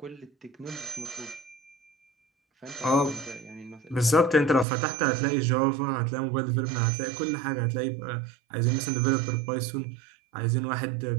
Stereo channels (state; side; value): drops out; left; at 4.7 s